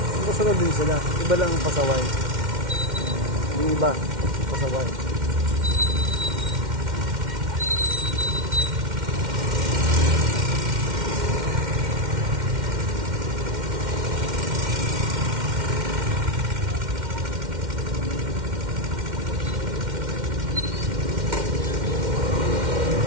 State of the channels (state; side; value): late; left; 2.1 ms